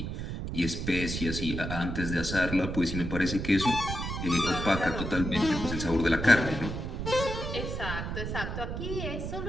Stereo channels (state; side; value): noise; right; rumble, 4 dB below the sound